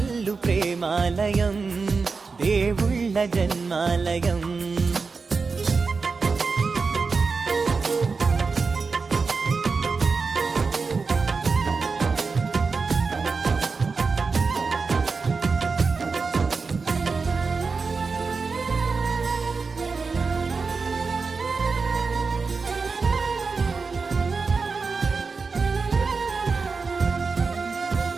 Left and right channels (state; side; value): quieter; left; 4.6 dB